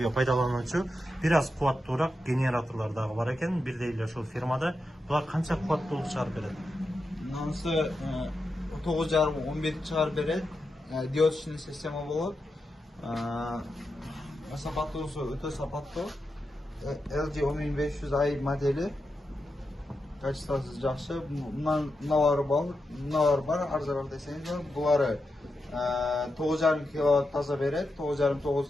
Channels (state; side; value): normal; both; correlation 0.88